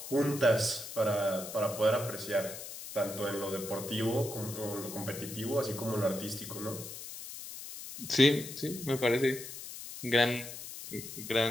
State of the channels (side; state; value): left; noise; hiss, 10 dB below the sound